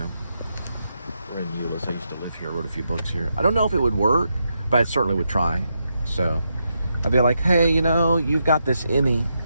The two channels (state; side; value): inverted; both; correlation -0.83